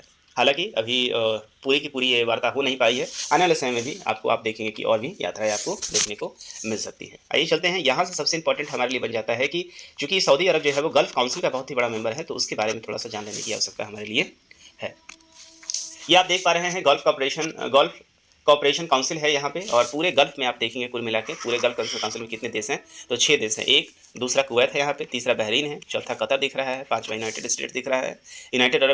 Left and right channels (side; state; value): both; identical; correlation 1.00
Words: हालांकि अभी पूरी की पूरी ये वार्ता हो नहीं पाई है, आने वाले समय में भी आप देखेंगे कि और भी यात्राएं आपको देखने को मिल सकती है। आइए चलते हैं, यहाँ से सबसे इंपॉर्टेंट हमारे लिए बन जाता है कि चूँकि सऊदी अरब जो है वो गल्फ काउंसिल का बहुत ही बड़ा मेंबर है, तो उसके बारे में थोड़ा सा जान लेने की आवश्यकता हमारे लिए है। ये आप देख पा रहे हैं गल्फ कॉपरेशन काउंसिल है यहाँ पे और पूरे गल्फ में आप देखेंगे कुल मिला के पूरे गल्फ काउंसिल में कितने देश हैं, तो 6 देश हैं। एक दूसरा कुवैत है यहाँ पे, तीसरा बहरीन है, चौथा कतर दिख रहा है, 5वां यूनाइटेड स्टेट दिख रहा है, यूनाइटेड अरब